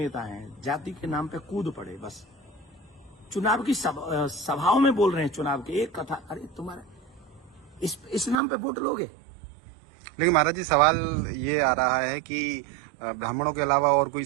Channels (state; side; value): drops out; left; at 8.4 s